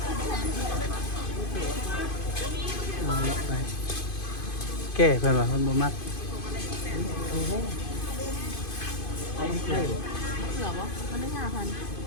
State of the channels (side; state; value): right; late; 2.5 ms